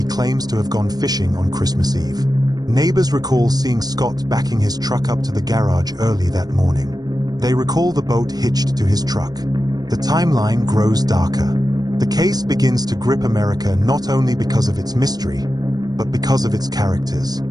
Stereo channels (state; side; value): late; left; 0.19 ms